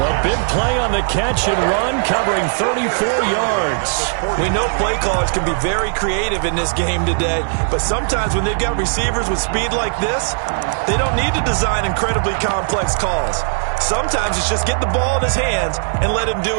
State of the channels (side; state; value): left; silent; digital silence